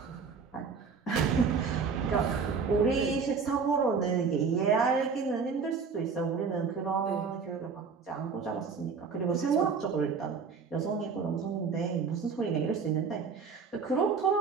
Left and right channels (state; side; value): quieter; left; 5.4 dB